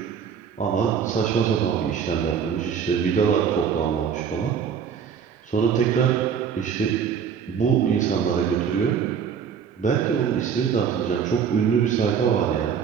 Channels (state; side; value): quieter; left; 7.3 dB